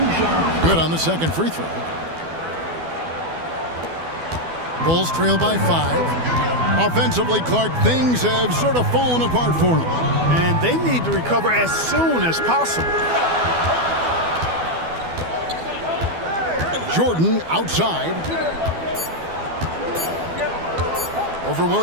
Good on the second free throw. Bulls trail by 5. Offensively, Clark, things have sort of fallen apart for them. And they need to recover as soon as possible. Jordan outside. Over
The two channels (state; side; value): late; left; 12 ms